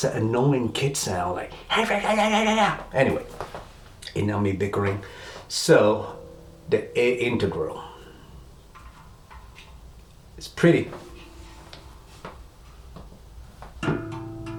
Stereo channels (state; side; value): identical; both; correlation 1.00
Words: an annoying kid sound, like, anyway, enough me bickering. So, the A integral. It's pretty.